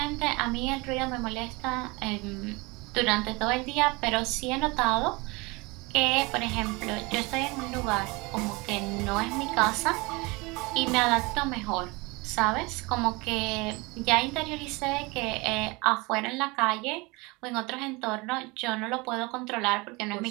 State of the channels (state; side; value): quieter; left; 25.5 dB